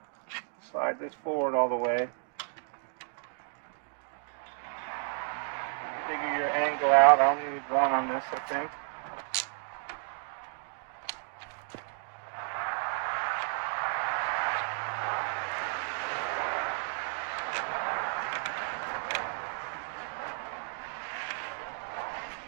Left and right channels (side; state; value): left; silent; 56 dB below the other